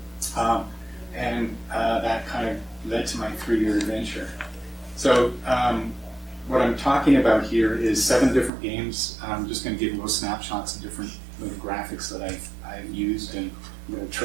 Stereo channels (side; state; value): left; drops out; at 8.5 s